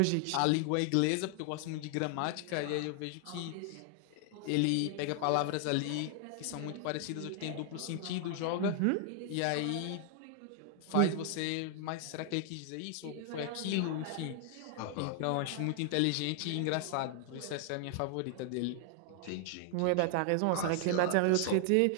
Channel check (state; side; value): different; both; correlation 0.00